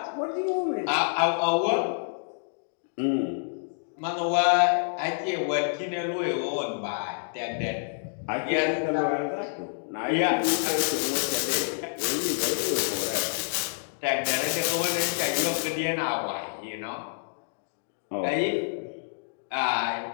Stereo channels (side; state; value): right; silent; digital silence